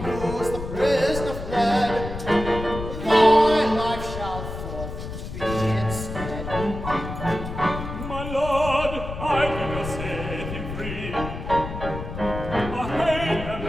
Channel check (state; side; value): noise; left; rumble, 8 dB below the sound